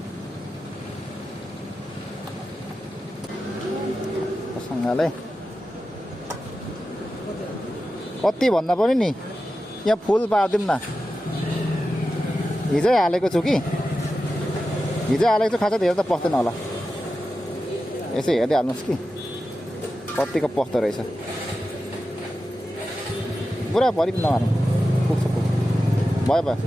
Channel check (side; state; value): both; normal; correlation 0.92